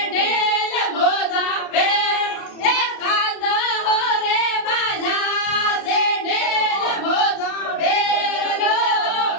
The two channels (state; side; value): late; right; 30 ms